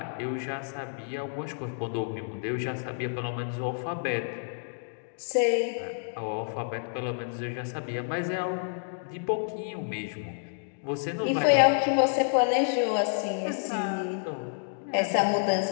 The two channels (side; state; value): right; silent; digital silence